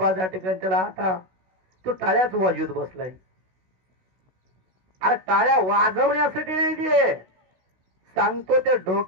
त्या ठिकाणी त्याला आता तो टाळ्याच वाजवत बसलाय. अरे टाळ्या वाजवण्यासाठी नाही ते, सांगतो ते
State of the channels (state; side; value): late; left; 16 ms